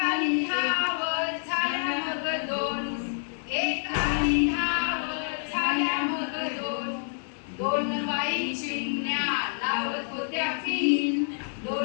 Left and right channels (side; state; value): right; silent; 60 dB below the other